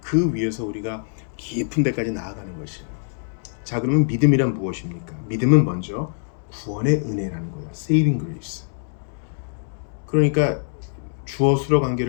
그 위에서 우리가 깊은 데까지 나아가는 것이에요. 자, 그러면 믿음이란 무엇입니까? 믿음은 먼저 구원의 은혜라는 거예요. Saving grace. 그러니까 주어 수로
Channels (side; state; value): right; silent; digital silence